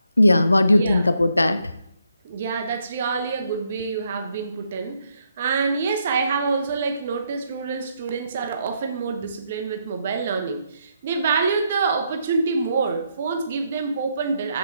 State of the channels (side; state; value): both; inverted; correlation -0.77